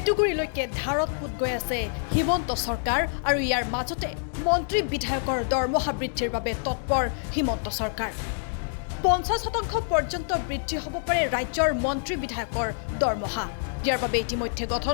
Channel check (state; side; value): silent; right; digital silence